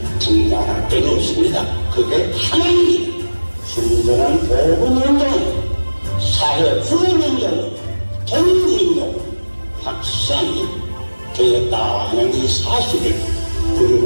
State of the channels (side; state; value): both; inverted; correlation -1.00